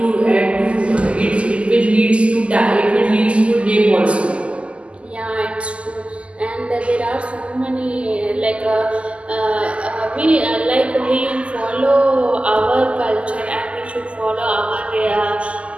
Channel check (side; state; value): left; late; 0.057 ms